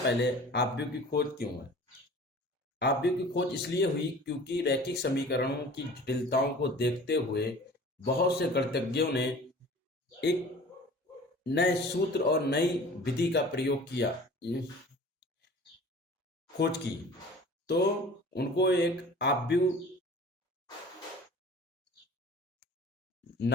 आव्यूह की खोज क्यों है? आव्यूह की खोज इसलिए हुई क्योंकि रैखिक समीकरणों की जटिलताओं को देखते हुए बहुत से गणितज्ञों ने एक नए सूत्र और नई विधि का प्रयोग किया, खोज की। तो उनको एक आव्यूह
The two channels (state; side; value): normal; both; correlation 0.44